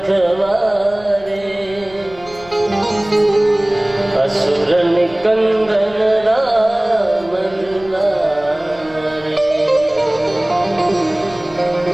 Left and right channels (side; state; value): left; noise; rumble, 22 dB below the sound